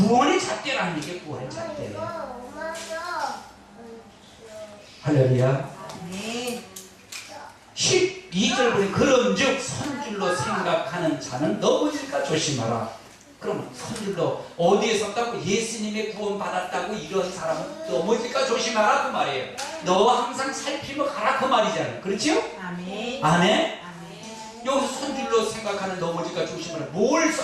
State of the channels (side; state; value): both; identical; correlation 1.00